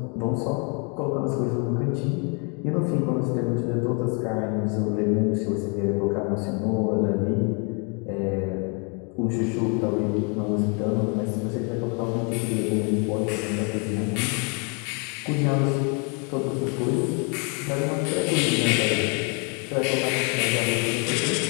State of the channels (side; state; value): right; quieter; 35.6 dB